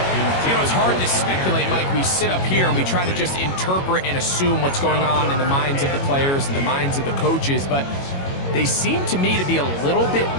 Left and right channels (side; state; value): right; late; 22 ms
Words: You know, it's hard to speculate, Mike. We sit up here and we try to just interpret and assume what's going on in the minds of the players and the minds of the coaches, but they seem to me to be a little bit